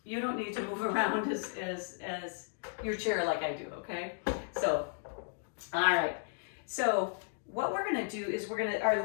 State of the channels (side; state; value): right; silent; digital silence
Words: You don't need to move around as your chair like I do, okay? So, all right. So what we're going to do is